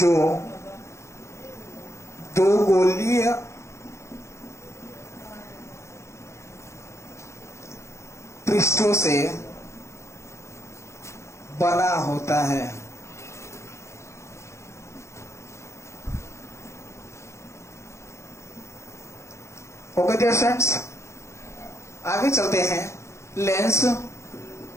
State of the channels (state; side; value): late; right; 0.14 ms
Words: दो गोलीय पृष्ठों से बना होता है। ओके डियर फ्रेंड्स, आगे चलते हैं। लेंस